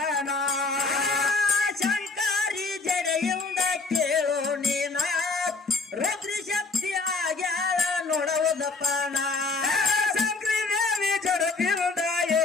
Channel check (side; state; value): right; quieter; 4.0 dB